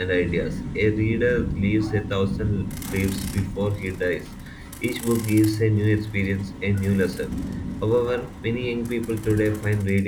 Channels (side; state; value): both; identical; correlation 1.00